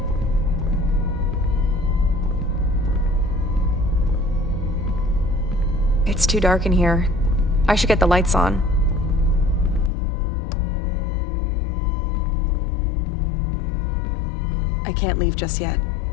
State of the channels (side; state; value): right; drops out; at 9.9 s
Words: It's too dark in here. I should get the lights on. I can't leave just yet.